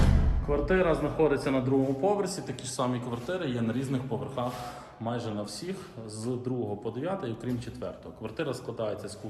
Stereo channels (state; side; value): identical; both; correlation 1.00